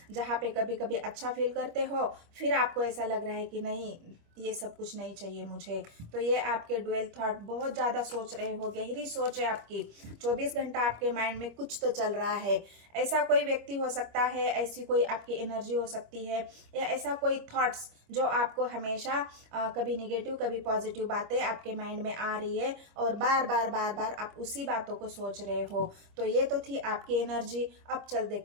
जहाँ पे कभी कभी अच्छा फील करते हो, फिर आपको ऐसा लग रहा है कि नहीं ये सब कुछ नहीं चाहिए मुझे। तो ये आपके डुअल थॉट, बहुत ज़्यादा सोच रहे हो, गहरी सोच है आपकी, 24 घंटा आपके माइंड में कुछ तो चल रहा है। ऐसा कोई व्यक्ति हो सकता है, ऐसी कोई आपकी एनर्जी हो सकती है, या ऐसा कोई थॉट्स जो आपको हमेशा कभी निगेटिव कभी पॉजिटिव बातें आपके माइंड में आ रही है, और बार बार बार बार आप उसी बातों को सोच रहे हो। तो ये तो थी आपकी एनर्जी। अब चल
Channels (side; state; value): left; late; 25 ms